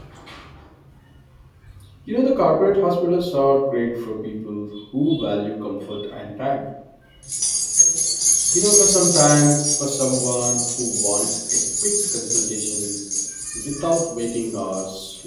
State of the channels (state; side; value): identical; both; correlation 1.00